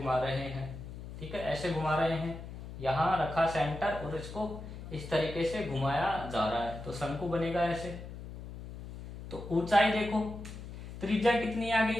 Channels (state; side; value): noise; left; hum, 11 dB below the sound